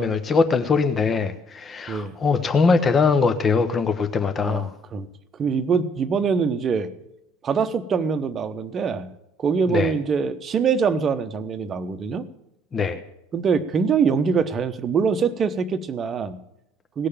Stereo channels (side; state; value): both; normal; correlation 0.65